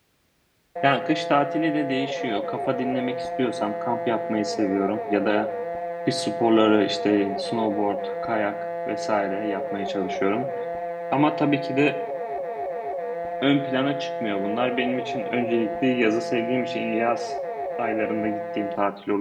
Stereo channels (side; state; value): both; identical; correlation 1.00